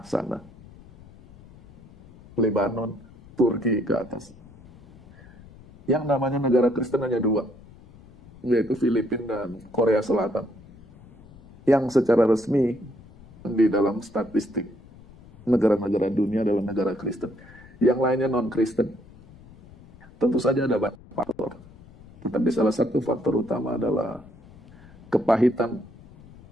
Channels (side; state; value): left; noise; rumble, 22 dB below the sound